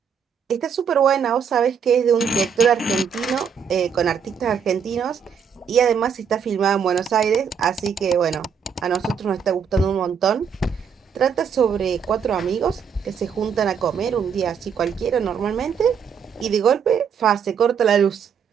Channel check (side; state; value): left; quieter; 7.0 dB